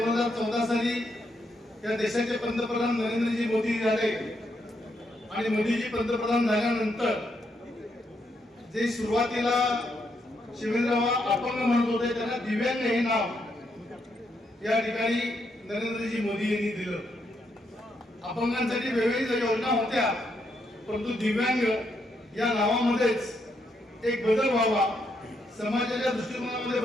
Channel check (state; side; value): normal; both; correlation 0.78